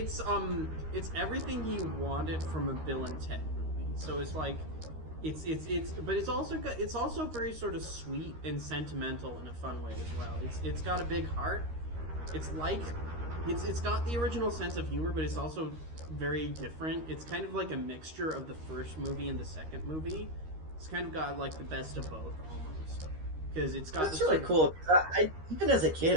everything you wanted from a Bill and Ted movie. So it's like but it's also very sort of sweet and sentimental in a fun way as well. It's got a big heart. It's like it's got the original sense of humor, but it's also very different. It's kind of like a mixture of the first movie and the second movie. It's kind of got like the best of both almost. Because it's got That's this really sort of- cool. I even as a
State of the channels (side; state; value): left; late; 13 ms